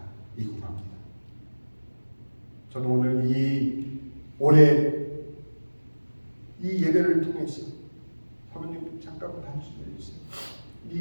합니다. 저는 오늘 올해 이 예배를 통해서, 사모님 잠깐만 한숨 내주세요.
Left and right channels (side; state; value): both; inverted; correlation -1.00